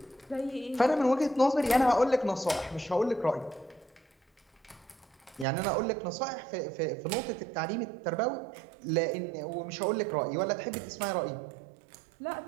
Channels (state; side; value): drops out; left; at 5.5 s